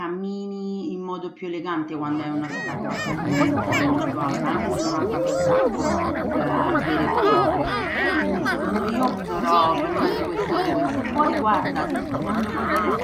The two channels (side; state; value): both; identical; correlation 1.00